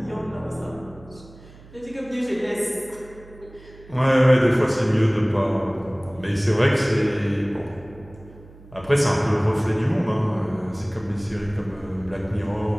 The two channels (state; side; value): noise; right; hum, 22 dB below the sound